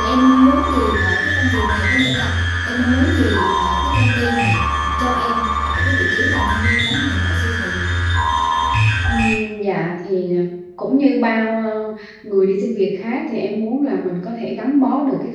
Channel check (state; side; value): identical; both; correlation 1.00